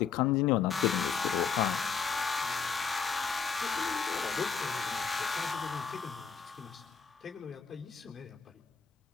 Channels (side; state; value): right; quieter; 6.1 dB